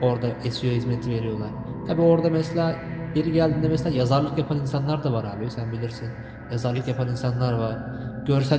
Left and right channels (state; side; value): identical; both; correlation 1.00